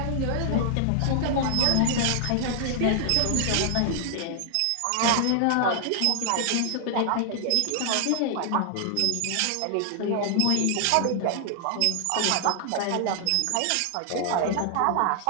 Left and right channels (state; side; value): different; both; correlation 0.00